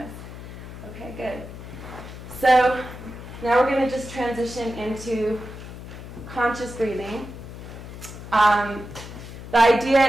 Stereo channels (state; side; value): noise; left; hum, 12 dB below the sound